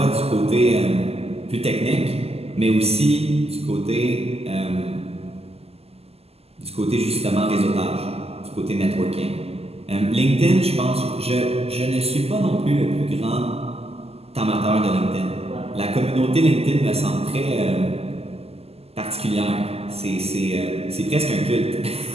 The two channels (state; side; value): late; left; 0.29 ms